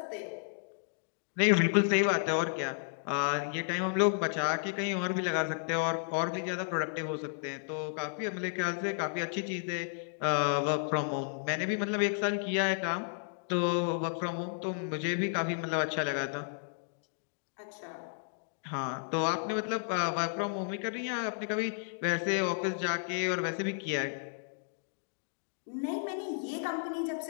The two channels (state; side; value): silent; right; digital silence